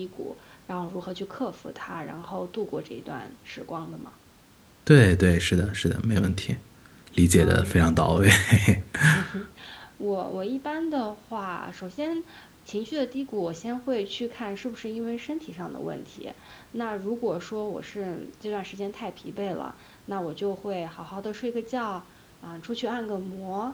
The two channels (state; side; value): identical; both; correlation 1.00